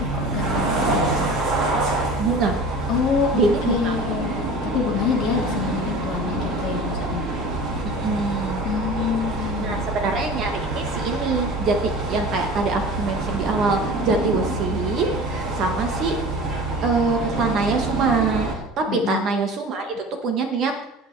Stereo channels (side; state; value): both; normal; correlation 0.38